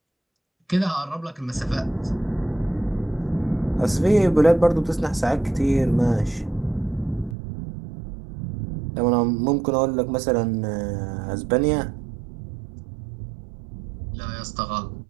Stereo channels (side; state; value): left; drops out; at 7.4 s